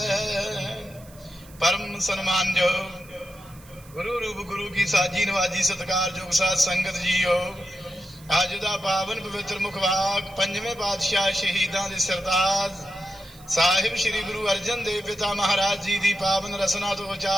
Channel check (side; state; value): right; noise; hiss, 23 dB below the sound